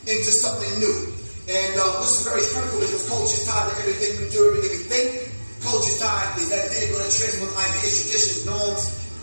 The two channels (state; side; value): inverted; both; correlation -1.00